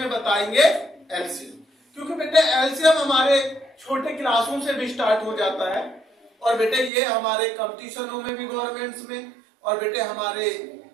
बताएंगे एलसीएम, क्योंकि बेटे एलसीएम हमारे छोटे क्लासों से भी स्टार्ट हो जाता है और बेटे ये हमारे कंपटीशनों में भी, गवर्नमेंट्स में, और बेटे हमारे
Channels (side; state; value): left; drops out; at 6.9 s